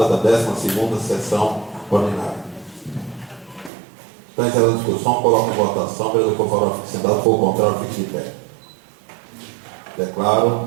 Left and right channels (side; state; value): left; drops out; at 3.7 s